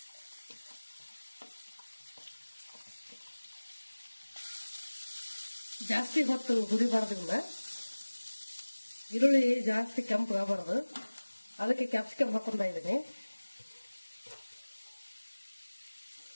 ಜಾಸ್ತಿ ಹೊತ್ತು ಹುರಿಬಾರ್ದು ಇವನ್ನ. ಈರುಳ್ಳಿ ಜಾಸ್ತಿ ಕೆಂಪು ಆಗಬಾರ್ದು, ಅದಕ್ಕೆ ಕ್ಯಾಪ್ಸಿಕಮ್ ಹಾಕೊಂಡ ಇದ್ದೀನಿ.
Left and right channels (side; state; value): both; inverted; correlation -1.00